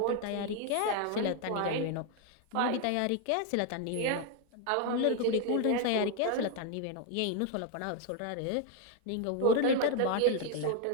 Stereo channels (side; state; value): both; different; correlation 0.01